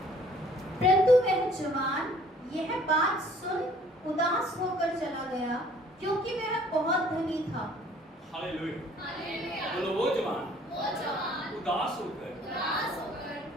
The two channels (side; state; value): both; normal; correlation 0.57